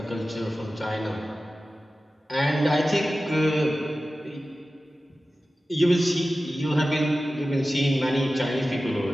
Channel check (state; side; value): normal; both; correlation 0.95